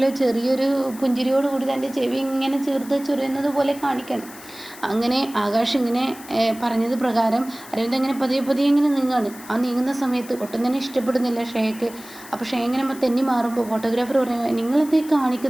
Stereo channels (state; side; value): noise; left; hiss, 18 dB below the sound